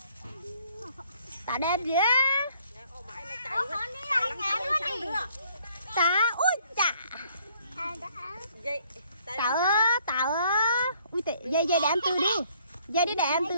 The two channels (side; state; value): both; inverted; correlation -0.62